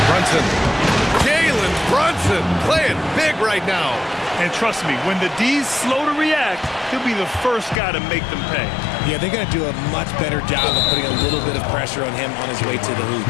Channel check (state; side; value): drops out; right; at 7.8 s